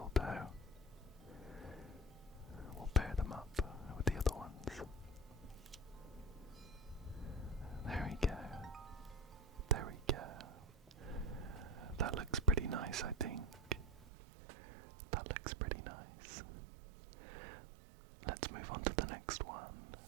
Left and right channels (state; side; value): drops out; left; at 14.1 s